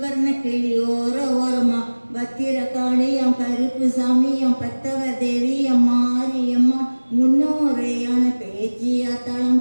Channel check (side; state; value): both; inverted; correlation -1.00